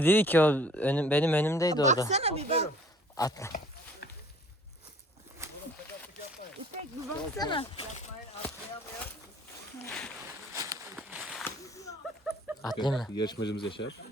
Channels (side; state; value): both; normal; correlation 0.53